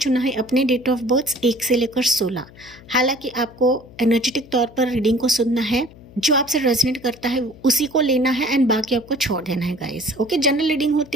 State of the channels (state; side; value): noise; left; hum, 22 dB below the sound